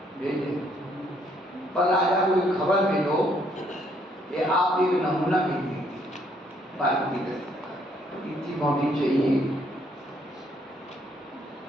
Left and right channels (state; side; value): normal; both; correlation 0.68